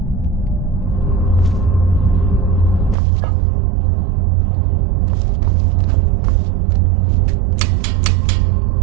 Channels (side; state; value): left; drops out; at 3.0 s